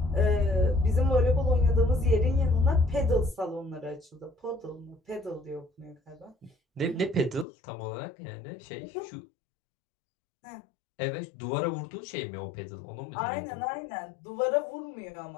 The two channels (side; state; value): right; drops out; at 7.5 s